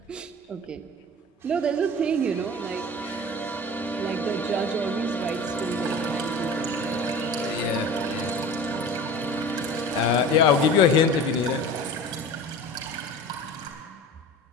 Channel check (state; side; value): normal; both; correlation 0.38